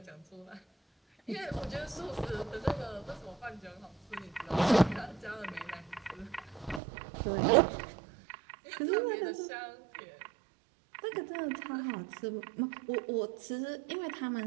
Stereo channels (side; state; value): left; drops out; at 6.8 s